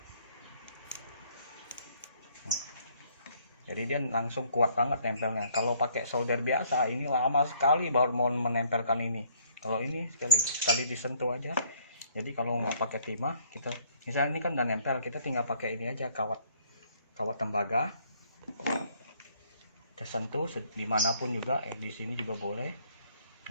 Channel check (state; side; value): inverted; both; correlation -0.64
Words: Jadi dia langsung kuat banget nempelnya. Kalau pakai solder biasa ini lama sekali baru mau menempelkan ini. Kalau ini sekali disentuh aja Jadi kalau nggak pakai timah, kita misalnya ini kan udah nempel, kita tinggal pakai ini aja, kawat tembaga. Kita sentuh dimanapun juga, di sini juga boleh.